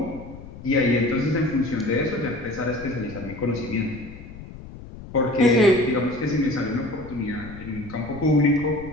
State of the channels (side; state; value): left; noise; rumble, 14 dB below the sound